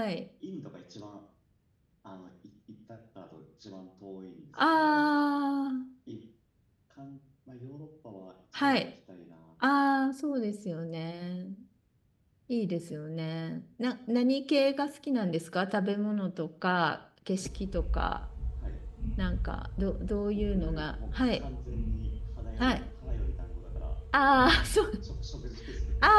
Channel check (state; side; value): identical; both; correlation 1.00